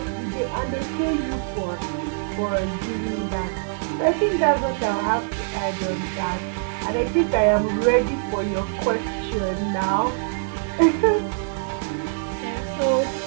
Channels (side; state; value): left; silent; 63 dB below the other